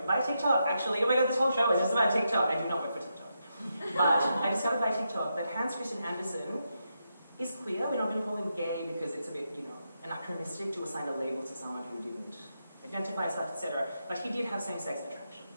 by TikTok, actually. Oh my god, this whole show is just about TikTok. I do not work for TikTok. But I discovered by TikTok that Hans Christian Andersen is queer. We're not going to call him gay because it's a bit, you know, anachronistic to assign a label to someone who didn't identify as such, etc. But he did have same-sex attraction.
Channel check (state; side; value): inverted; both; correlation -0.84